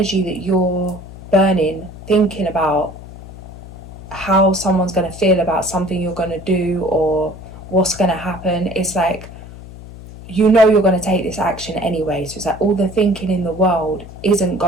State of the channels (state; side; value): noise; left; hum, 15 dB below the sound